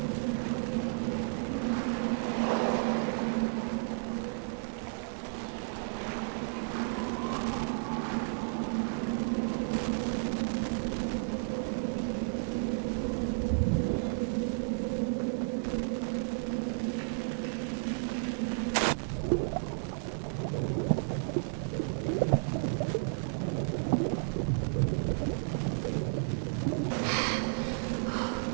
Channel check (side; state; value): left; silent; digital silence